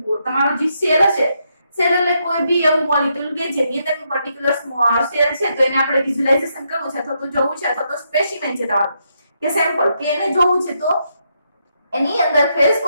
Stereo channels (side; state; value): both; inverted; correlation -0.79